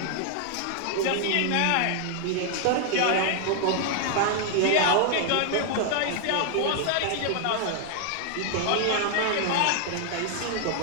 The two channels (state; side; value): different; both; correlation 0.00